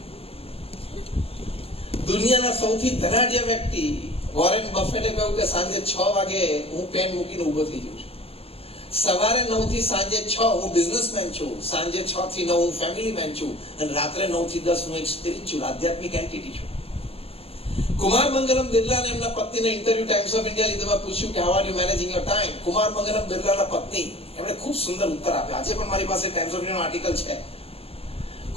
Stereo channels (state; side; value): late; right; 0.28 ms